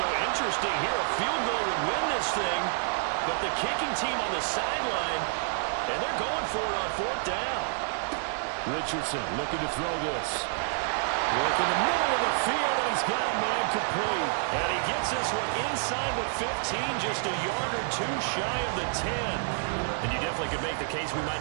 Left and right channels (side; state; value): left; silent; digital silence